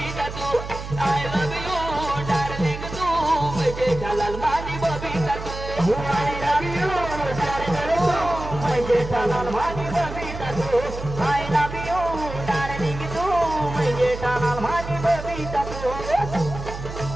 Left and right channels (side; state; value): right; noise; hum, 9 dB below the sound